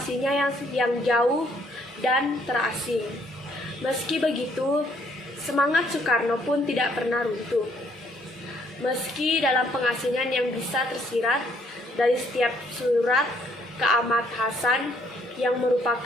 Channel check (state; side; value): normal; both; correlation 0.67